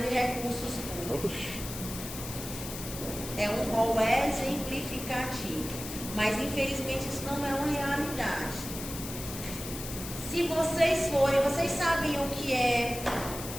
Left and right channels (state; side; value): noise; left; hiss, 9 dB below the sound